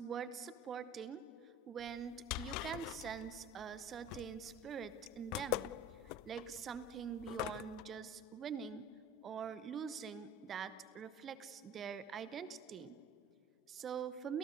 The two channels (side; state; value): both; normal; correlation 0.43